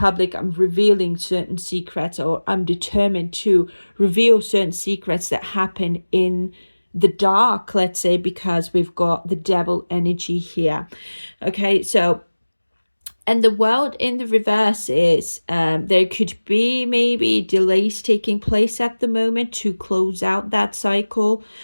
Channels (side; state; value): both; inverted; correlation -1.00